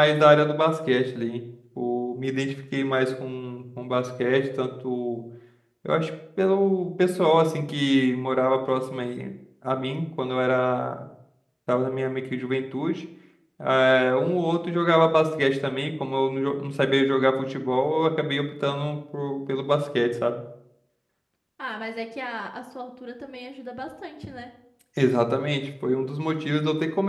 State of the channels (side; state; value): both; identical; correlation 1.00